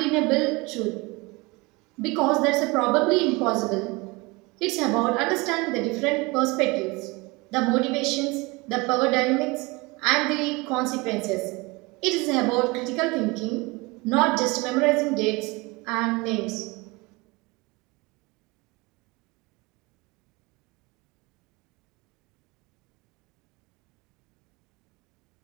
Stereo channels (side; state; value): left; quieter; 25.0 dB